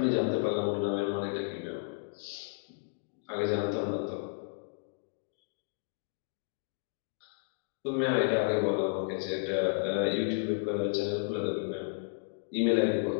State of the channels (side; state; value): right; silent; digital silence